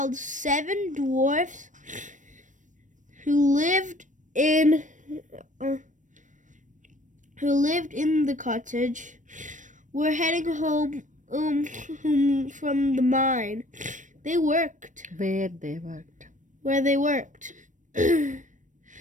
7 dwarfs who lived in the cottage were heading home from the mine. They worked. Where they worked. Where they worked. The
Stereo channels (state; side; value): late; left; 0.37 ms